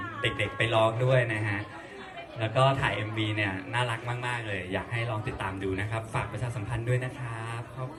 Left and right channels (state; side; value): identical; both; correlation 1.00